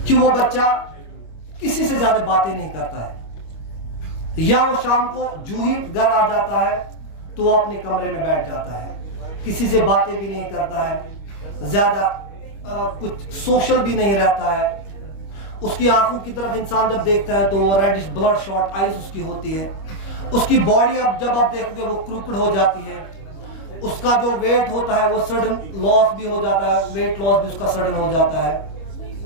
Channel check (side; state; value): right; late; 25 ms